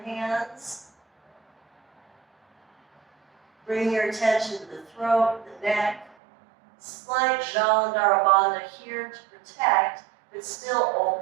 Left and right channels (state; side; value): drops out; left; at 6.2 s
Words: hands. Bring your attention to the throat, the neck. Slight Jalandhara Bandha here to protect, but still